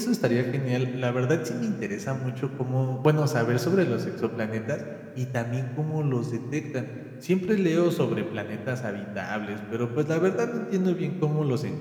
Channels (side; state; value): both; identical; correlation 1.00